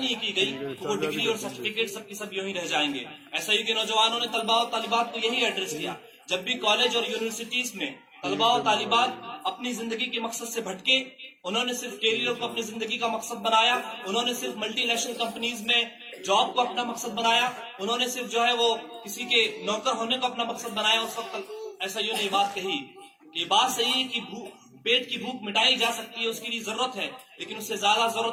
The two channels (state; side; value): identical; both; correlation 1.00